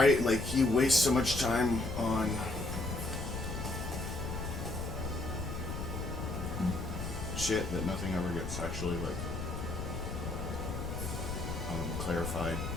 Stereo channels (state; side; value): noise; left; rumble, 5 dB below the sound